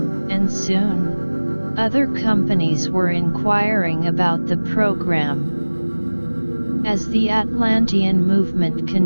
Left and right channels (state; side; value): inverted; both; correlation -1.00